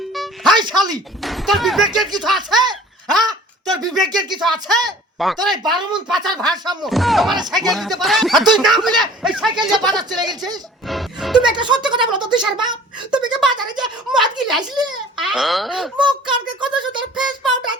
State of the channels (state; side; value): normal; both; correlation 0.48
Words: হাই শালি, তোর বিবেকের কিছু আছে? হ্যাঁ, তোর বিবেকের কিছু আছে? তোর এই 12 মন পাচার ভারসাম্য তোমার সাইকেল দিতে পারে, আর তুই না বলে এই সাইকেল নিয়ে বাজার চলে গেছিস। তুমি একটা সত্যি কথা বলো তো তুষার বাপ, তুমি কি বাজারে যে মদ গিলে আসলে মুখ কানকে কত সুন্দর ফেস পাউডার